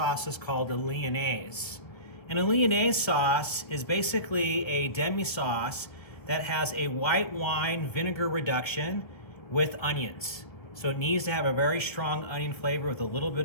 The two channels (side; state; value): right; late; 1.5 ms